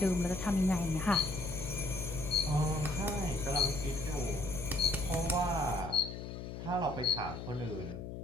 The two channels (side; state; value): left; noise; hum, 8 dB below the sound